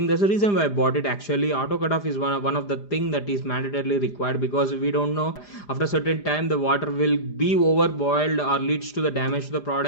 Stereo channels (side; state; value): right; late; 4.9 ms